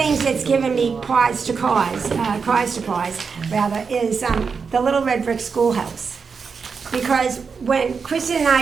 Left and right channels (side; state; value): left; quieter; 5.5 dB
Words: that's given me cause to pause, rather, is the Little Red Brick Schoolhouse. Because when Kristen and